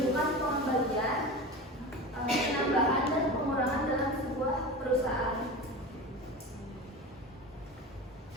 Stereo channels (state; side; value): normal; both; correlation 0.29